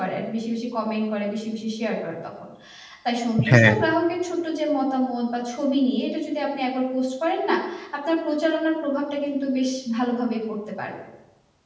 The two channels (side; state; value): both; identical; correlation 1.00